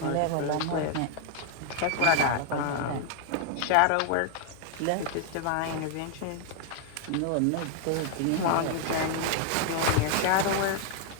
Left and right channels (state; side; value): different; both; correlation 0.00